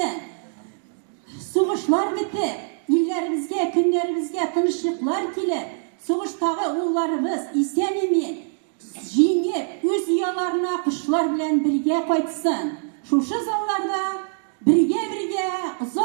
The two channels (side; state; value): left; silent; digital silence